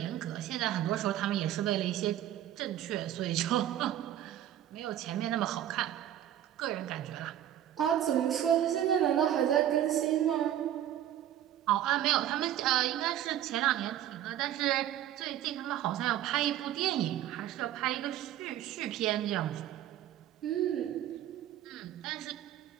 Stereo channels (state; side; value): quieter; left; 11.7 dB